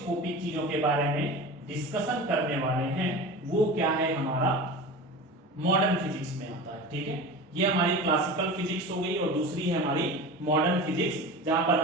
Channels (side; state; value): both; normal; correlation 0.32